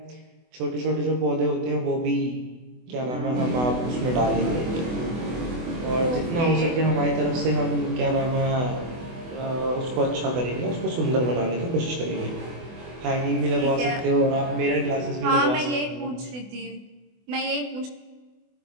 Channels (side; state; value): left; late; 24 ms